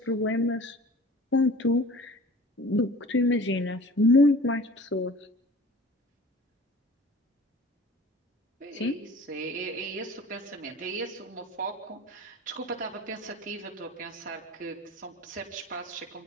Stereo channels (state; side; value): normal; both; correlation 0.43